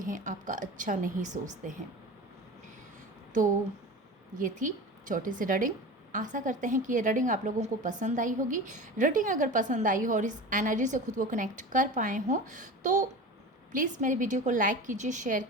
आपका अच्छा नहीं सोचते हैं। तो ये थी छोटी सी रीडिंग। आशा करते हैं कि ये रीडिंग आप लोगों को पसंद आई होगी। रीडिंग अगर पसंद आई हो और इस एनर्जी से खुद को कनेक्ट कर पाए हों तो प्लीज़ मेरे वीडियो को लाइक कीजिए, शेयर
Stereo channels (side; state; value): both; normal; correlation 0.32